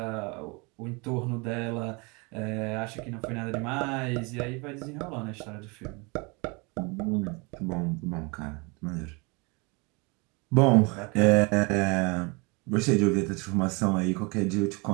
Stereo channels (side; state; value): left; quieter; 29.1 dB